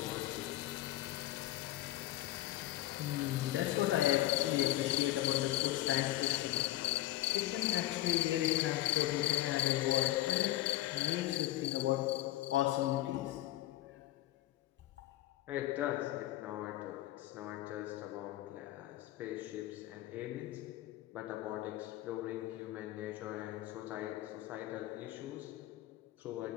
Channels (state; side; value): quieter; right; 15.4 dB